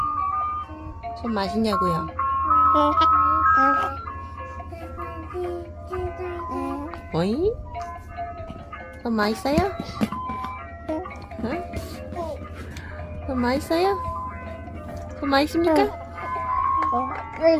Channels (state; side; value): identical; both; correlation 1.00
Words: 손 맛있냐고요? 어이? 손 맛있어요? 응? 손 맛있어요? 손 맛있습니까?